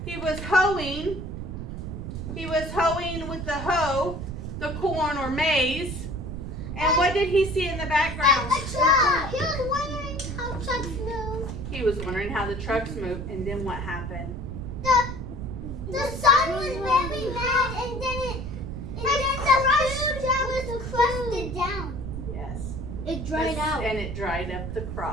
He was hoeing. He was hoeing with the hoe, the corn or maize. And what did he see in the background? A truck. He was wondering how trucks move. He was wondering how the trucks move, and then what happened? The sun was very mad, and then the food was crusted down. Yes. It dried out. And it dried up the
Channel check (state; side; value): noise; right; rumble, 7 dB below the sound